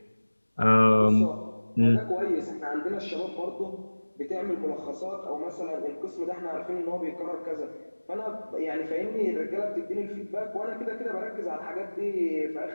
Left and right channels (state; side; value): inverted; both; correlation -1.00